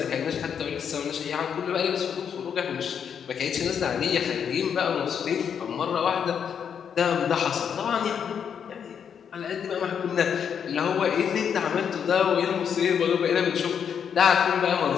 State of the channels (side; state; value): right; quieter; 7.7 dB